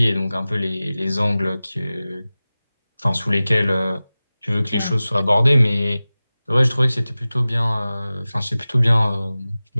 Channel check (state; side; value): inverted; both; correlation -0.97